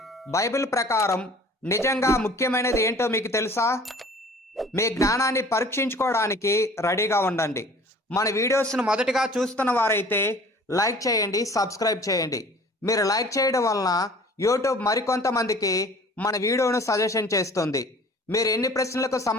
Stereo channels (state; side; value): normal; both; correlation 0.48